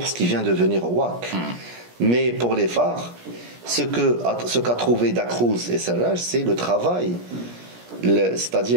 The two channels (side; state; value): left; late; 17 ms